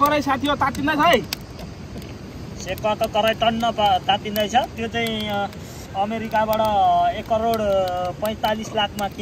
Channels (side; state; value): both; identical; correlation 1.00